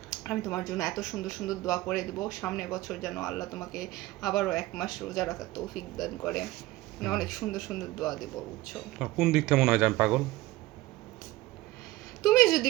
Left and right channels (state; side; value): quieter; left; 18.2 dB